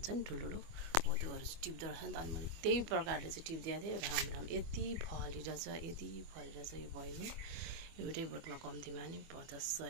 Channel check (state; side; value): late; left; 24 ms